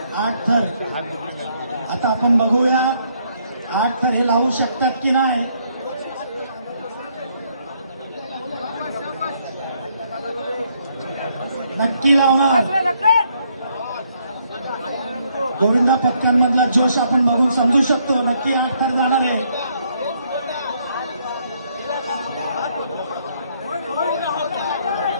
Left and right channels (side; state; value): both; inverted; correlation -0.71